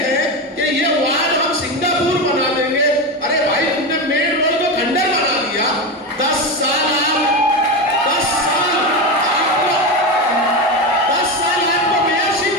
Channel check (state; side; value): normal; both; correlation 0.17